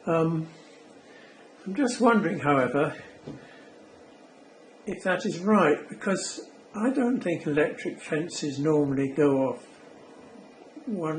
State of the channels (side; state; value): both; identical; correlation 1.00